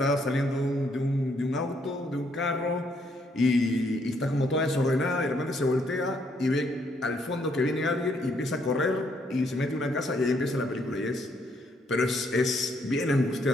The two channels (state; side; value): normal; both; correlation 0.71